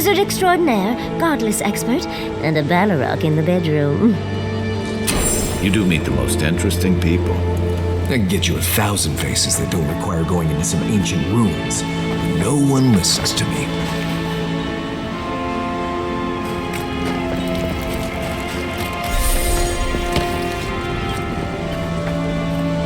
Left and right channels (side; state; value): both; identical; correlation 1.00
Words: extraordinaire, godless expert, and a Balrog in the bedroom. You do meet the most interesting people. I can get you 1,000 faces that don't require going into some ancient ruins. No one listens to me.